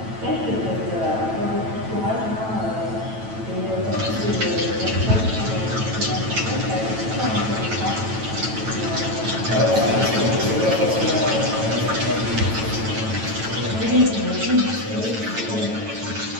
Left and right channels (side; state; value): left; late; 9.1 ms